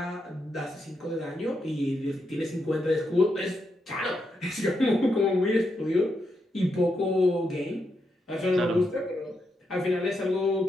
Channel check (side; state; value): both; normal; correlation 0.82